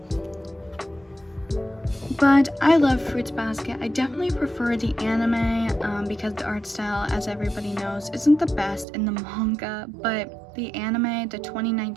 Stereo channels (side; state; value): left; drops out; at 8.8 s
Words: But I love Fruits Basket. I definitely prefer the anime because the art style, as everybody knows, isn't the best in the manga. But the anime, the